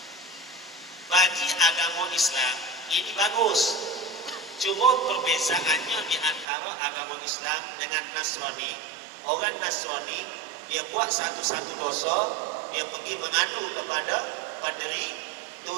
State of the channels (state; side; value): drops out; left; at 6.5 s